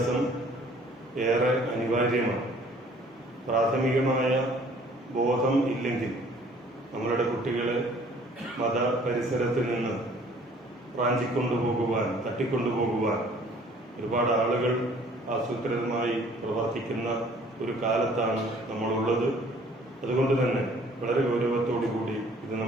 ഏറെ അനിവാര്യമാണ്. പ്രാഥമികമായ ബോധം ഇല്ലെങ്കിൽ നമ്മളുടെ കുട്ടികളെ മത പരിസരത്തിൽ നിന്ന് റാഞ്ചിക്കൊണ്ടുപോകുവാൻ, തട്ടിക്കൊണ്ടുപോകുവാൻ ഒരുപാട് ആളുകൾ ആസൂത്രിതമായി പ്രവർത്തിക്കുന്ന ഒരു കാലത്താണ് നമ്മളുള്ളത്. അതുകൊണ്ട് തന്നെ വളരെ ഗൗരവത്തോടുകൂടി ഇത്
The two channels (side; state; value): both; normal; correlation 0.56